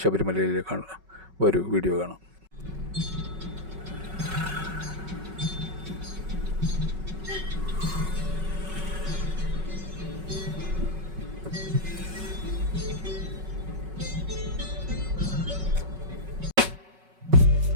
ശബരിമലയിലേക്കാണ്. ഒരു വീഡിയോ കാണാം.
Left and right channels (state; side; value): late; left; 5.3 ms